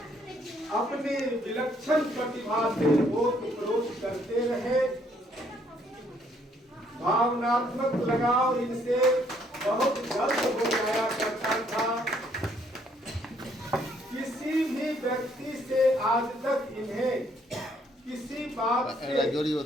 अपनी विलक्षण प्रतिभा से ओत-प्रोत करते रहे। भावनात्मक लगाव इनसे बहुत जल्द हो जाया करता था। किसी भी व्यक्ति से आज तक इन्हें किसी बात से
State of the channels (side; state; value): both; normal; correlation 0.67